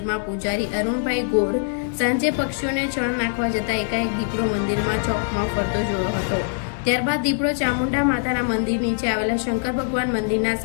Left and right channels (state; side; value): silent; right; digital silence